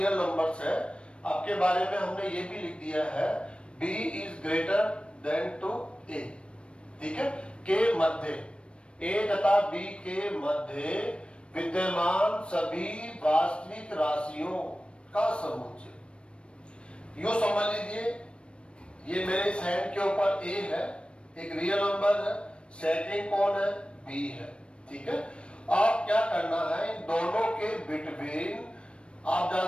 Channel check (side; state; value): right; late; 0.058 ms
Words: नंबर्स है। आपके बारे में हमने ये भी लिख दिया है B is greater than to A, ठीक है। के मध्य, ए तथा बी के मध्य विद्यमान सभी वास्तविक राशियों का समुच्चय। यूं समझ लीजिए ये मेरे इस हैंड के ऊपर ए है, एक रियल नंबर है, सेकंड कौन है, बी है, ठीक है। आप क्या करना है, इन दोनों के बिटवीन आप